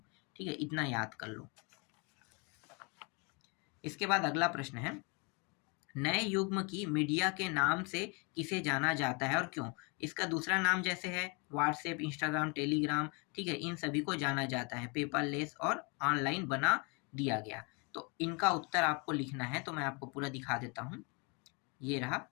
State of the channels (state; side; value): quieter; right; 31.7 dB